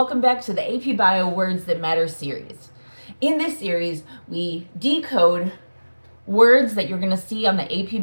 back to the AP Bio Words That Matter series. In this series, we decode words that you're going to see on the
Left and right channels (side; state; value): both; inverted; correlation -1.00